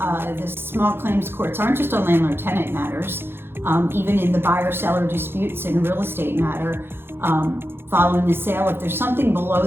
small claims courts aren't just on landlord tenant matters, even in the buyer seller disputes in a real estate matter. Following the sale, if there's something below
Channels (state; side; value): late; left; 0.11 ms